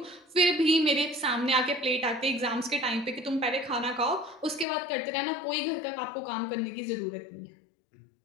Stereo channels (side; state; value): right; drops out; at 4.7 s